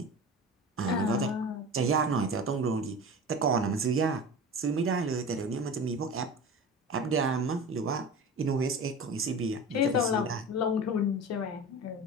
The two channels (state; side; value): normal; both; correlation 0.32